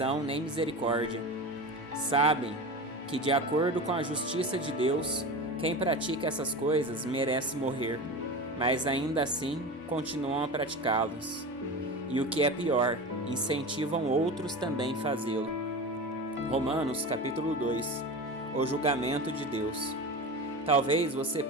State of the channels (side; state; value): both; normal; correlation 0.28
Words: nem misericórdia. Sabem que, de acordo com a justiça de Deus, quem pratica essas coisas merece morrer, mas ainda assim continuam a praticá-las. E o que é pior, incentivam outros também a fazê-lo. Romanos capítulo 2. O julgamento de Deus. Talvez você